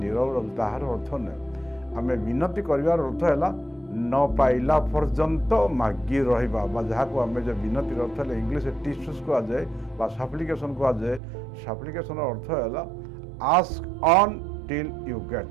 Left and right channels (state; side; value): drops out; left; at 11.2 s